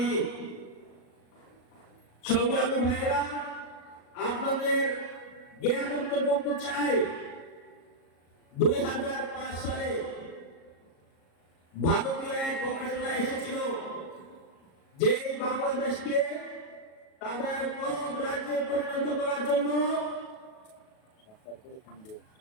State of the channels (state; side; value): late; right; 37 ms